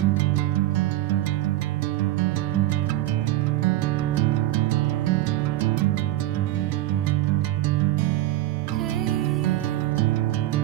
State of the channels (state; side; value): quieter; left; 14.9 dB